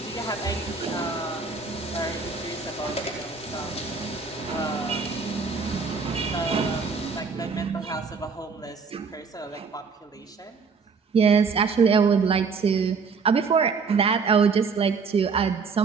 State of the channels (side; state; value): left; quieter; 5.1 dB